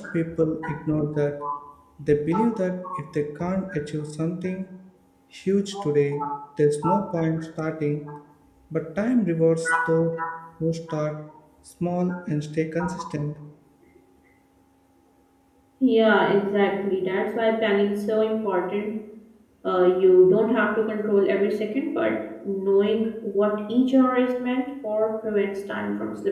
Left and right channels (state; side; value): identical; both; correlation 1.00